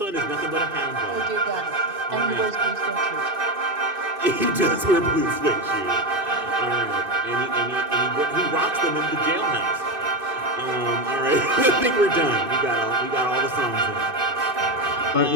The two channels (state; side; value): late; left; 2.6 ms